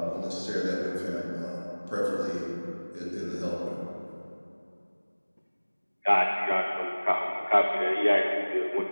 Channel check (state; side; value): inverted; both; correlation -1.00